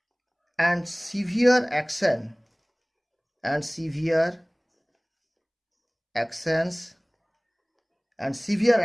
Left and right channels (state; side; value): identical; both; correlation 1.00